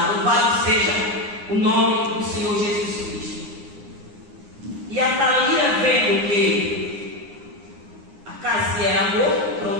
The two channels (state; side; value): late; left; 9.7 ms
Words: Louvado seja o nome do Senhor Jesus Cristo. E a Thalia, vendo que a casa era morta, o